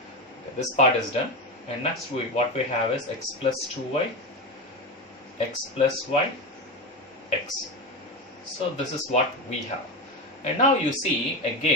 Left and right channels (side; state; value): both; normal; correlation 0.18